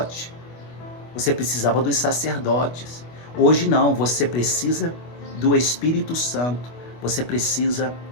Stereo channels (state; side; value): late; right; 25 ms